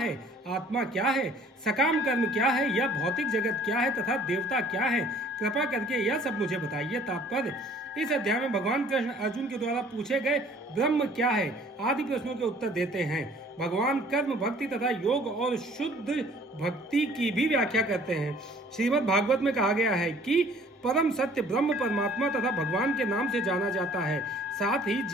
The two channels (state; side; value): normal; both; correlation 0.54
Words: आत्मा क्या है, सकाम कर्म क्या है, यह भौतिक जगत क्या है तथा देवता क्या है, कृपा करके यह सब मुझे बताइए। तात्पर्य: इस अध्याय में भगवान कृष्ण अर्जुन के द्वारा पूछे गए ब्रह्म क्या है आदि प्रश्नों के उत्तर देते हैं। भगवान कर्म, भक्ति तथा योग और शुद्ध भक्ति की भी व्याख्या करते हैं। श्रीमद् भागवत में कहा गया है कि परम सत्य ब्रह्म परमात्मा तथा भगवान के नाम से जाना जाता है। साथ ही